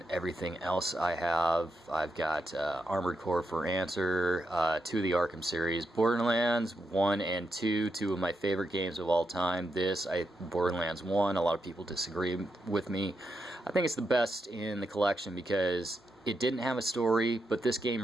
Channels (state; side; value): normal; both; correlation 0.84